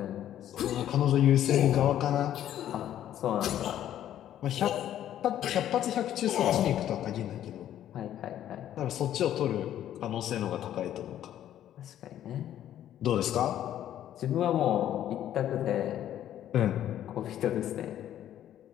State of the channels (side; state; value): right; quieter; 11.4 dB